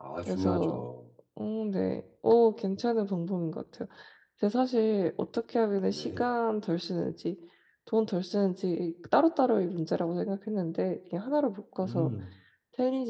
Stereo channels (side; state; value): both; identical; correlation 1.00